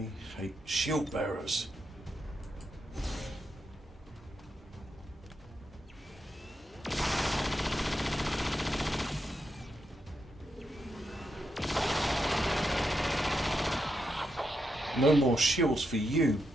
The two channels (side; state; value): both; normal; correlation 0.84